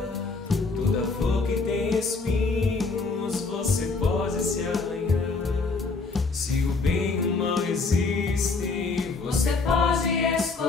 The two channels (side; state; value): right; quieter; 4.0 dB